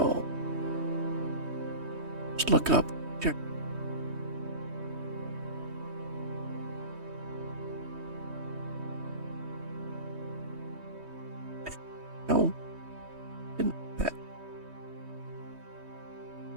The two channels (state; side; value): late; left; 3.2 ms